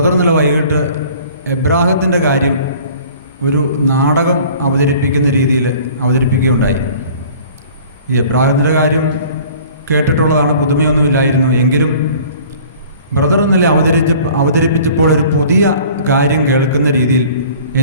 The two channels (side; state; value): both; inverted; correlation -0.48